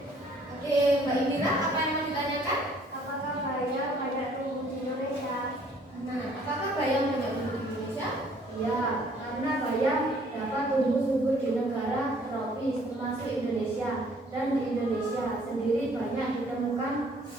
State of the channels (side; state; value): both; normal; correlation 0.60